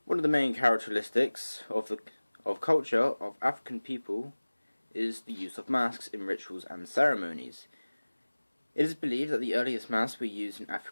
One of the main characteristics of culture of African people is the use of masks in rituals and ceremonies. It is believed that the earliest masks were used in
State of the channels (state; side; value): inverted; both; correlation -1.00